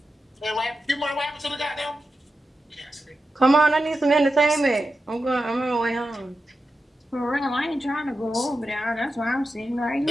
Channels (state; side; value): normal; both; correlation 0.90